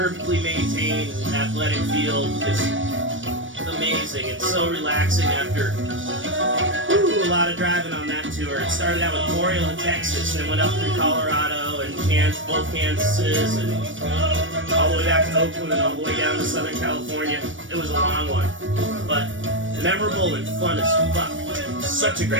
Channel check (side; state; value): left; late; 0.56 ms